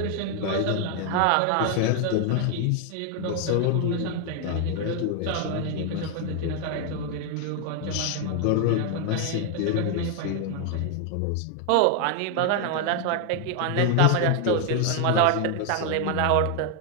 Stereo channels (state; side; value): different; both; correlation 0.01